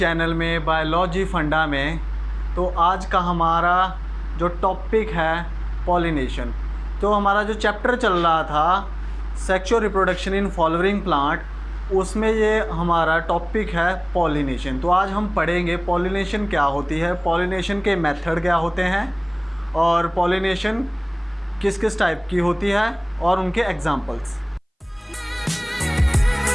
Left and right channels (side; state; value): both; identical; correlation 1.00